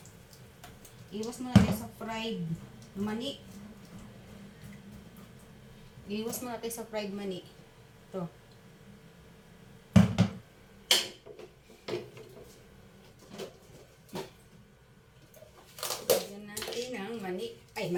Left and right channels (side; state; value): both; identical; correlation 1.00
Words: Iwas mo natin sa fried mani. Iwas mo natin sa fried mani. Ito. Lagyan natin ng mani. Ay,